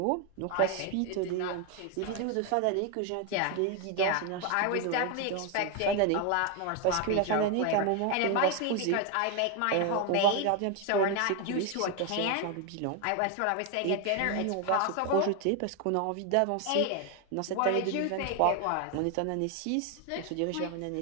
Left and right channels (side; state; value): both; different; correlation 0.01